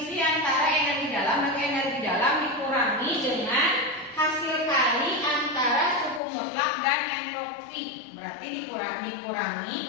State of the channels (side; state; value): right; drops out; at 6.2 s